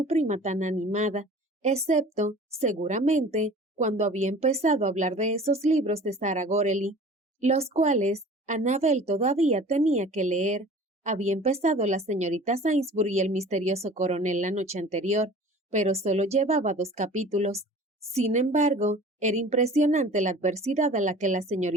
prima tan animada, excepto, seguramente, cuando había empezado a hablar de esos libros de Sarah Gorely, los cuales Annabel todavía tenía que leer. Había empezado la señorita Sainsbury y el misterioso coronel la noche anterior, pero solo llevaba 2 capítulos. Sin embargo, era impresionante la adversidad a la que la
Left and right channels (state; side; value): normal; both; correlation 0.44